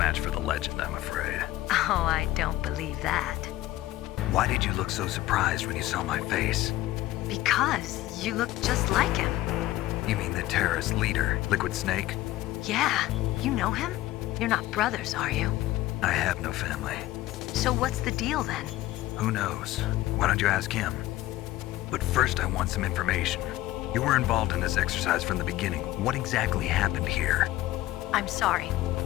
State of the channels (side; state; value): right; quieter; 16.1 dB